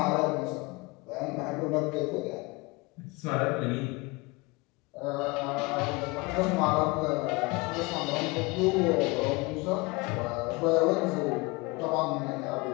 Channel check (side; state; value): right; quieter; 25.3 dB